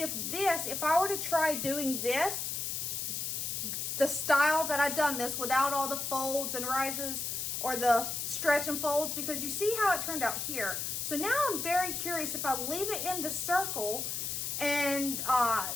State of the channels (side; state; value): left; noise; hiss, 2 dB below the sound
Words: I were to try doing this, the style that I've done this without all the folds and rises or the stretch and folds, because you see how it turned out here. So now I'm very curious if I leave it in the circle and